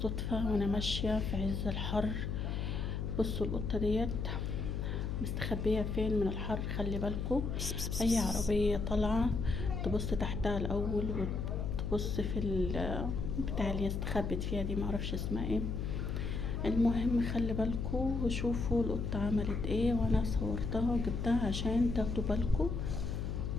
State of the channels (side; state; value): left; noise; hum, 2 dB below the sound